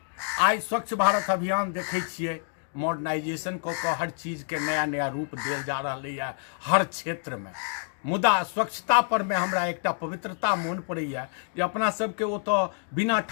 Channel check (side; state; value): right; silent; 57 dB below the other